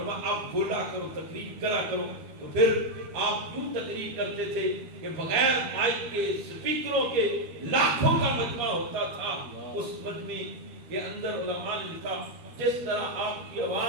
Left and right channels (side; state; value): left; late; 13 ms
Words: آپ بولا کرو، تقریر کرا کرو۔ تو پھر آپ یوں تقریر کرتے تھے کہ بغیر مائک کے سپیکروں کے لاکھوں کا مجمع ہوتا تھا، اس مجمع کے اندر علماء نے لکھا جس طرح آپ کی